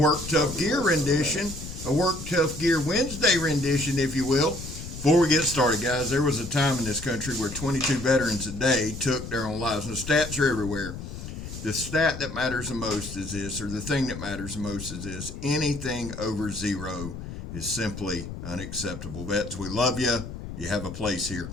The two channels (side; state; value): left; noise; rumble, 9 dB below the sound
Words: Tough Gear rendition, a Work Tough Gear Wednesday rendition, if you will. Before we get started, guys, there was a time in this country where 22 veterans a day took their own lives. And the stats are everywhere. The stat that matters the most is this, or the thing that matters the most is this: anything over zero is simply unacceptable. Vets, we love you. You have a place here.